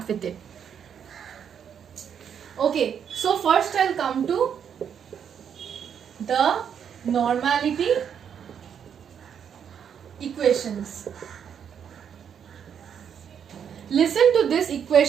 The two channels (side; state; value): left; quieter; 8.0 dB